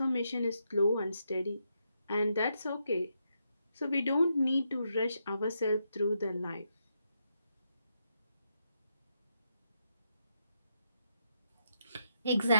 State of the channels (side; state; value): both; inverted; correlation -0.81